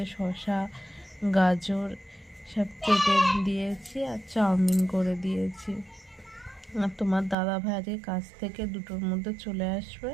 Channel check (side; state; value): left; drops out; at 7.4 s